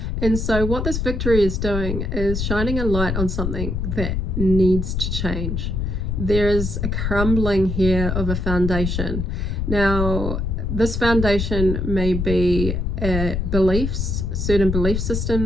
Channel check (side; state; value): left; noise; rumble, 1 dB below the sound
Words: And so what this victory is doing is shining a light on something that needs to change. There is a crumbling here of a foundation. Now, this foundation may be beliefs, certain belief